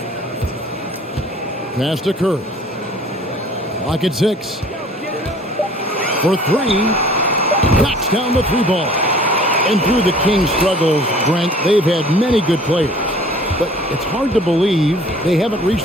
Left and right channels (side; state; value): both; normal; correlation 0.50